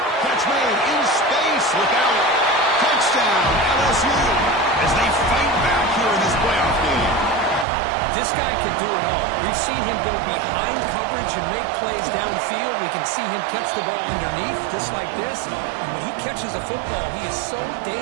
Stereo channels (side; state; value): left; drops out; at 7.7 s